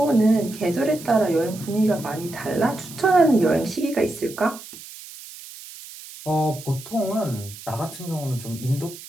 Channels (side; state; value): right; noise; hiss, 15 dB below the sound